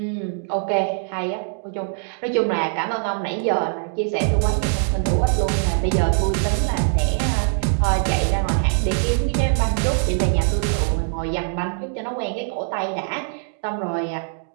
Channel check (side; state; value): left; silent; 64 dB below the other